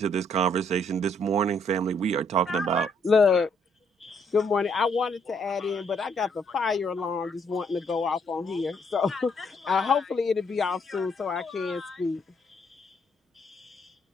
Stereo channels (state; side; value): normal; both; correlation 0.70